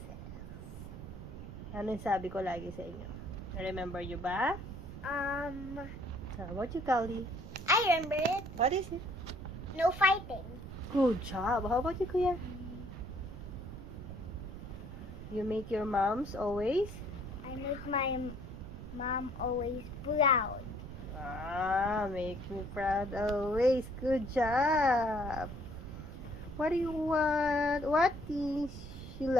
says? Ano yung sabi ko lagi sa inyo? Remember you ba? How about you, Kali? I remember it. What is it? No fighting. Good job. How about you, Kuya? You make your moms always? I make my mom always proud. Make me proud always. Good job. What do you want? What things you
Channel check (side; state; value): right; noise; rumble, 11 dB below the sound